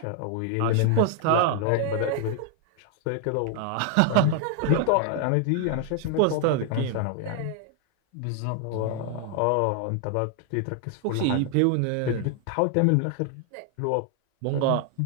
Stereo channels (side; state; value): both; different; correlation 0.00